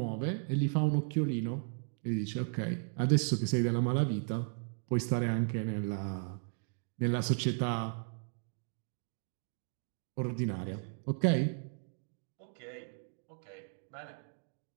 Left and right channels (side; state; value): left; silent; 54 dB below the other